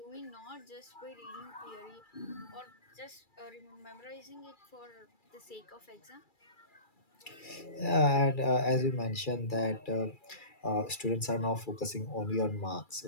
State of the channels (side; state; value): right; late; 2.3 ms